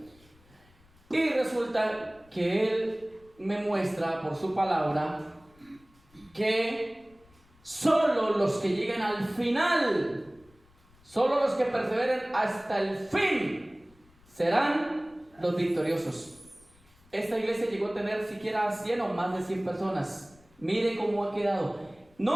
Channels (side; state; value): left; noise; rumble, 29 dB below the sound